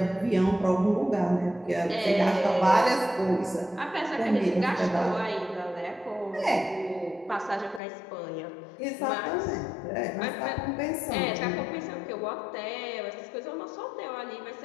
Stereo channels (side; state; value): right; drops out; at 7.8 s